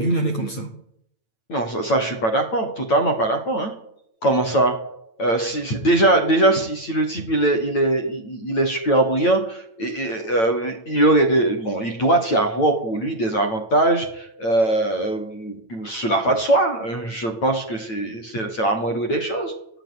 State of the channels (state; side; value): late; right; 9.0 ms